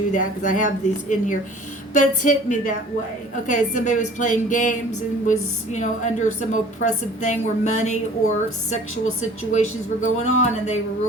that because I have these in here, but it's hit me that way. Okay, somebody was playing games and was, under some oppressive thing where money or sexual situations were going on, and they were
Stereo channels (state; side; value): normal; both; correlation 0.48